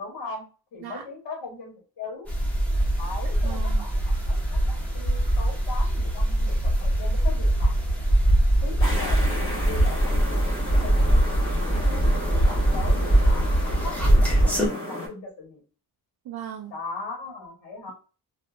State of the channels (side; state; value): both; normal; correlation 0.87